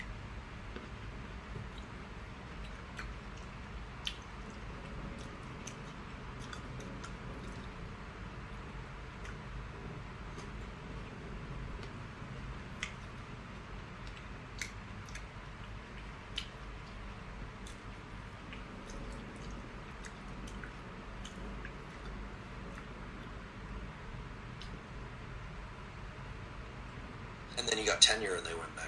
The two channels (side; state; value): both; identical; correlation 1.00